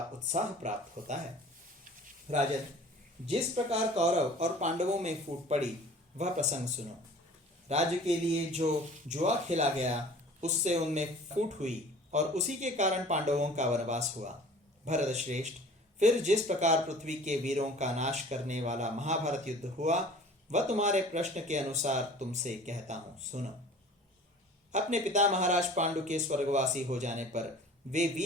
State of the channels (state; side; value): normal; both; correlation 0.45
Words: उत्साह प्राप्त होता है। राजन, जिस प्रकार कौरव और पांडवों में फूट पड़ी वह प्रसंग सुनो। राज्य के लिए जो जुआ खेला गया उससे उनमें फूट हुई और उसी के कारण पांडवों का वनवास हुआ। भरत श्रेष्ठ, फिर जिस प्रकार पृथ्वी के वीरों का नाश करने वाला महाभारत युद्ध हुआ वह तुम्हारे प्रश्न के अनुसार तुमसे कहता हूं, सुनो। अपने पिता महाराज पांडु के स्वर्गवासी हो जाने पर वे